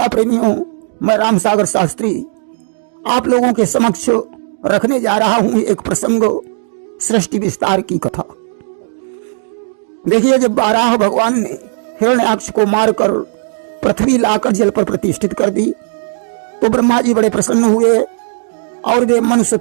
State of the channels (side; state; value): left; silent; digital silence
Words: प्रेमियों, मैं राम सागर शास्त्री आप लोगों के समक्ष रखने जा रहा हूं एक प्रसंग, सृष्टि विस्तार की कथा। देखिए, जब बाराह भगवान ने हिरण्याक्ष को मारकर पृथ्वी लाकर जल पर प्रतिष्ठित कर दी तो ब्रह्मा जी बड़े प्रसन्न हुए और वे मन